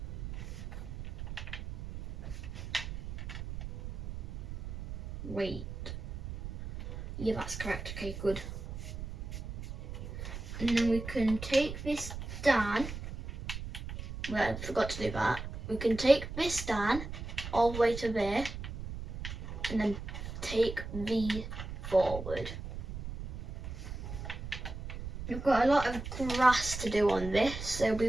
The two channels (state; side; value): noise; right; rumble, 8 dB below the sound